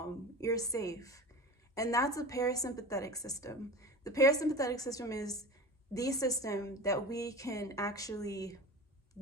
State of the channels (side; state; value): both; normal; correlation 0.33